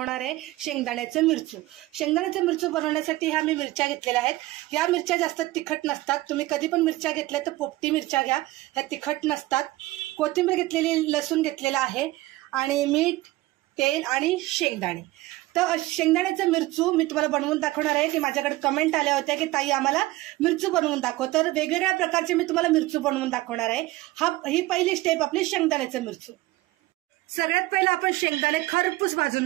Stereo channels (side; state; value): left; quieter; 18.4 dB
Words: आहे शेंगदाण्याचं मिरचू। शेंगदाण्याचं मिरचू बनवण्यासाठी ह्या मी मिरच्या घेतलेल्या आहेत। या मिरच्या जास्त तिखट नसतात। तुम्ही कधी पण मिरच्या घेतल्या तर पोपटी मिरच्या घ्या, ह्या तिखट नसतात। कोथिंबीर घेतलेली, लसूण घेतलेला आहे आणि मीठ, तेल आणि शेंगदाणे। तर शेंगदाण्याचं मिरचू मी तुम्हाला बनवून दाखवणार आहे की माझ्याकडे कमेंट आल्या होत्या की ताई आम्हाला मिरचू बनवून दाखव। तर वेगवेगळ्या प्रकारचे मी तुम्हाला मिरचू बनवून दाखवणार आहे। ही पहिली स्टेप आपली शेंगदाण्याचं मिरचू। सगळ्यात पहिलं आपण शेंगदाणे खरपूस भाजून